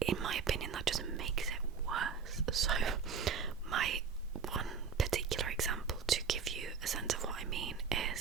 in my opinion, that just makes it worse. So my one particular example to give you a sense of what I mean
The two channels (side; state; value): left; quieter; 6.0 dB